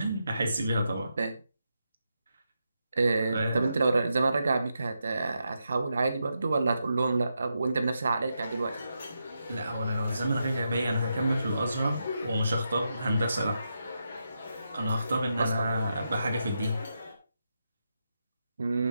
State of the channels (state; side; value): inverted; both; correlation -0.85